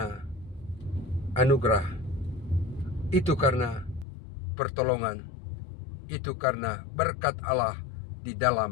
anugerah, itu karena pertolongan, itu karena berkat Allah di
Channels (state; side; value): drops out; right; at 4.0 s